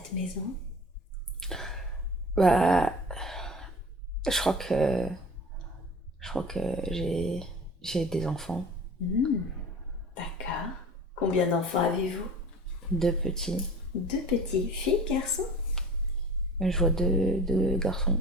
maison? Bah, je crois que j'ai des enfants. D'accord. Combien d'enfants avez-vous? 2 petits. 2 petits, filles, garçons? Je vois deux garçons.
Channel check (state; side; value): normal; both; correlation 0.41